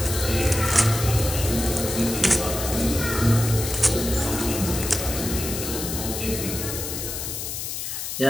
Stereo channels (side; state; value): left; noise; hiss, 5 dB below the sound